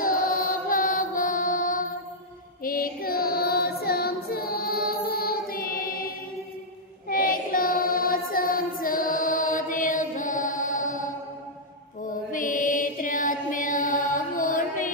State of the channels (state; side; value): normal; both; correlation -0.07